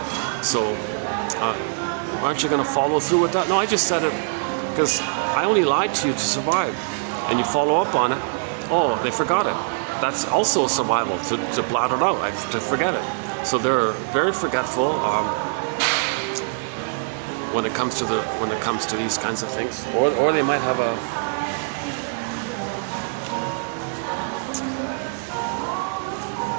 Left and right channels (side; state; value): left; silent; 60 dB below the other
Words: So, aren't you going to follow through with that? "No, I just said it because I only lied to you to survive." And you follow up on it. "Oh, they forgot it." That's also survival, to blot it out, to forget it. So they're very forgetful when it comes to these kinds of things, or they might have a